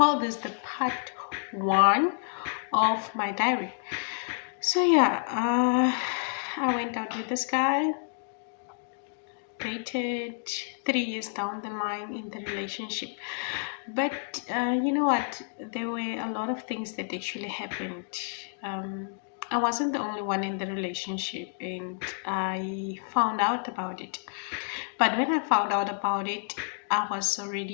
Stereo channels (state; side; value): silent; right; digital silence